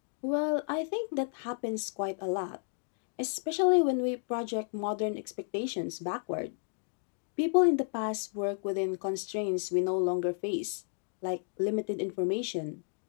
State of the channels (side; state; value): right; silent; digital silence